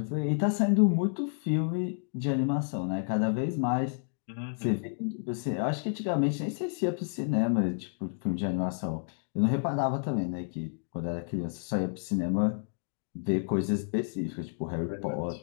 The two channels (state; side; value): silent; right; digital silence